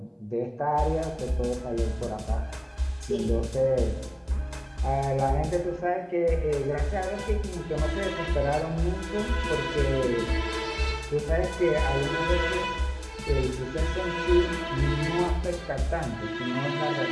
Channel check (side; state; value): both; identical; correlation 1.00